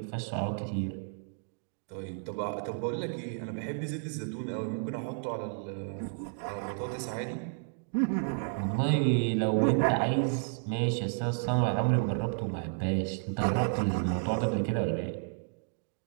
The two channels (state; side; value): silent; left; digital silence